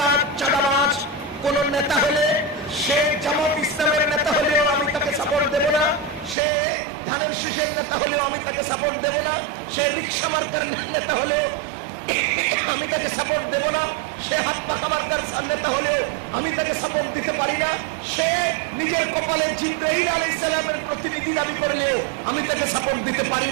চাঁদাবাজ কোন নেতা হলে, সে জামাত ইসলামের নেতা হলেও আমি তাকে সাপোর্ট দেব না, সে ধানের শীষের নেতা হলেও আমি তাকে সাপোর্ট দেব না, সে রিক্সা মার্কার নেতা হলেও আমি তাকে সাপোর্ট দেব না, সে হাত পাখা মার্কার নেতা হলেও আমি তাকে সাপোর্ট দিতে পারি না, সে নিজের কপালে জিবরাইল আলাইহিস সালামের প্রতিনিধি দাবি করলেও আমি তাকে সাপোর্ট দিতে পারি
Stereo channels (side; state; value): left; drops out; at 6.4 s